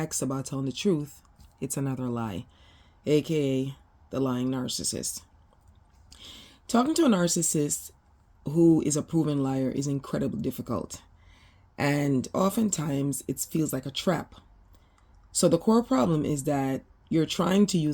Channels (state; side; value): identical; both; correlation 1.00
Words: about telling the truth, it's another lie, aka the lying narcissist. Talking to a narcissist who is a proven liar is incredibly difficult, and oftentimes it feels like a trap. So the core problem is that you're trying to